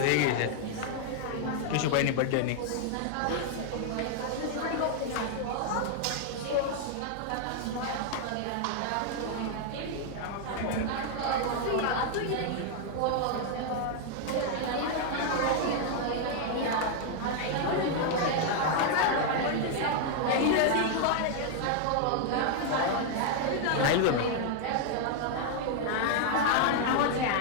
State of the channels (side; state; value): both; different; correlation 0.00